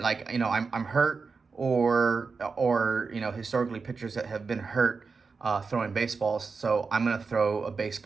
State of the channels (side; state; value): left; quieter; 4.7 dB